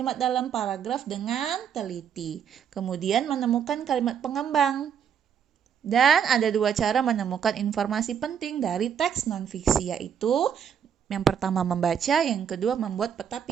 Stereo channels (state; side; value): quieter; left; 8.1 dB